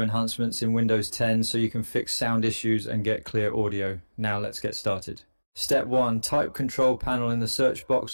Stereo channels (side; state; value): both; inverted; correlation -1.00